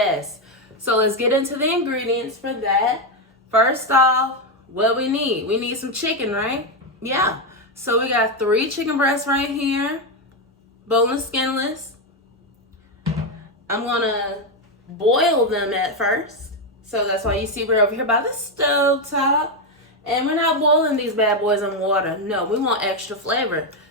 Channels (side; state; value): both; normal; correlation 0.07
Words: So let's get into the ingredients for that. First off, what we need. We need some chicken, right? Yeah. So we got 3 chicken breasts right here. Boneless, skinless. I'm gonna boil them at first. So that's why you see we're over here by the stove top. And we're not boiling these bad boys in water. No, we want extra flavor.